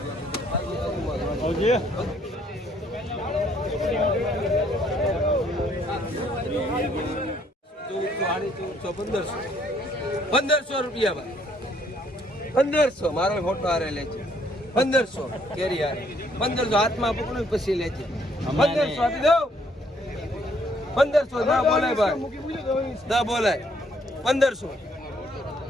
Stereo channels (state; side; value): normal; both; correlation 0.66